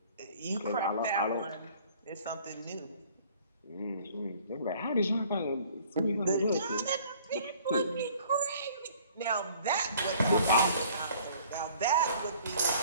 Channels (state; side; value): inverted; both; correlation -0.55